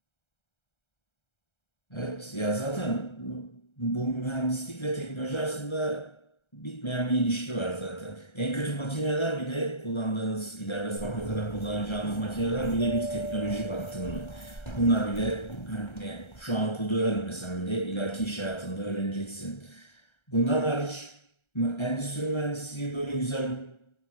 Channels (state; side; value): late; right; 1.3 ms